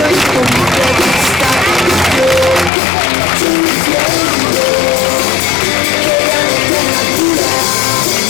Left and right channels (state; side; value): drops out; right; at 2.7 s